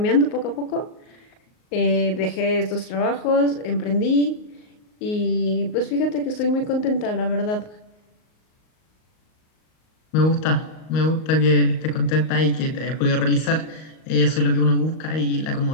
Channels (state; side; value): late; right; 38 ms